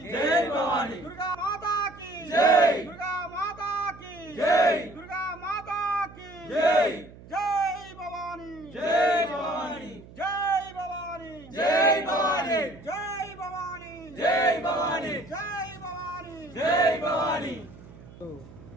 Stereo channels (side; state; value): right; noise; hum, 19 dB below the sound